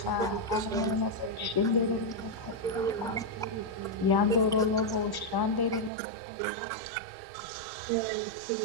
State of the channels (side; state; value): left; drops out; at 5.9 s